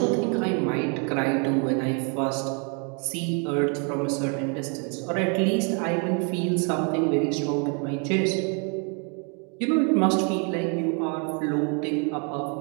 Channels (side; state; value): left; quieter; 37.5 dB